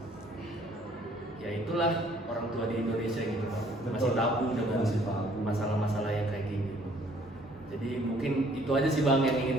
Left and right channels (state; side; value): normal; both; correlation 0.60